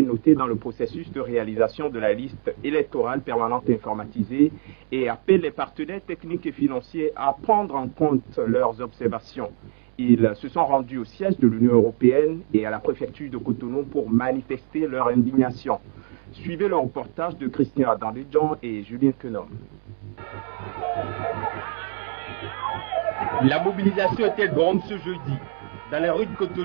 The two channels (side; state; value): left; silent; 57 dB below the other